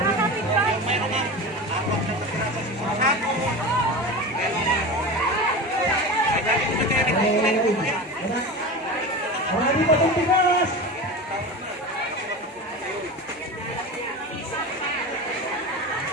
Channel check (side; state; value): both; normal; correlation 0.28